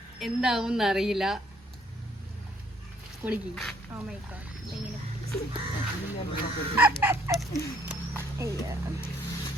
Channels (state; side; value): normal; both; correlation 0.65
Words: എന്താവും അറിയില്ല. കുളിക്ക്